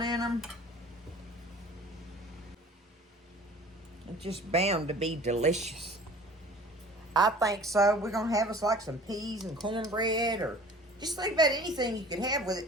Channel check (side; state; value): both; normal; correlation 0.45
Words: in them. It's just bound to be delicious. I think so. We're going to have us like some peas and cornbread, or just think about anything you could have with